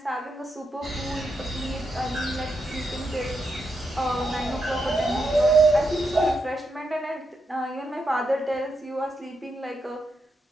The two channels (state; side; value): normal; both; correlation 0.83